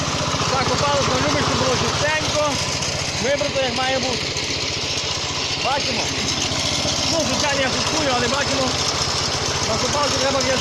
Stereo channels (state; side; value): identical; both; correlation 1.00